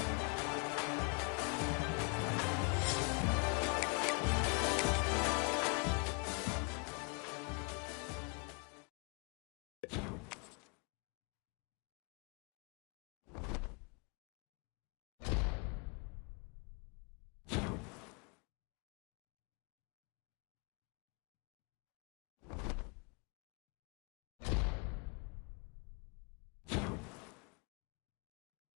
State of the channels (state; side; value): quieter; right; 33.5 dB